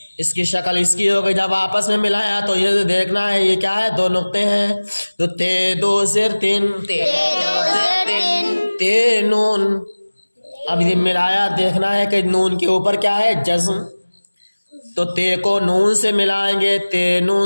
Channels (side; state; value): both; inverted; correlation -1.00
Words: اس کی شکل اس کی ہو گئی. جب آپس میں ملایا تو یہ دیکھنا ہے یہ کیا ہے، دو نقطے ہیں. تو تے دو زیر تین، تے دو زیر تین. تے نون. اب یہ ملایا، دیکھنا ہے کہ نون کے اوپر کیا ہے، جزم. تو تے کو نون سے ملائیں گے تے